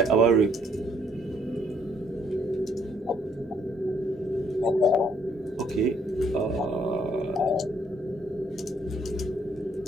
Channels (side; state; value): both; normal; correlation 0.67